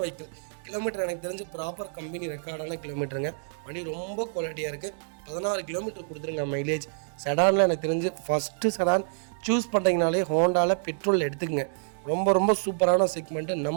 வெஹிக்கிள். கிலோமீட்டர் எனக்கு தெரிஞ்சு ப்ராப்பர் கம்பெனி ரெக்கார்டான கிலோமீட்டருங்க. வண்டி ரொம்ப குவாலிட்டியாக இருக்குது. 16 கிலோமீட்டர் கொடுத்துருங்க மைலேஜ். செடானில் எனக்கு தெரிஞ்சு ஃபஸ்ட்டு செடான் சூஸ் பண்ணுறீங்கனாலே ஹோண்டாவில் பெட்ரோல் எடுத்துக்கங்க. ரொம்ப சூப்பரான செக்மெண்ட்டு.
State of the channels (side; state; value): left; silent; digital silence